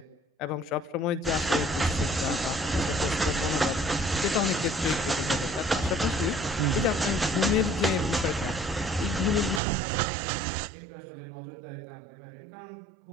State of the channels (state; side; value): drops out; left; at 9.6 s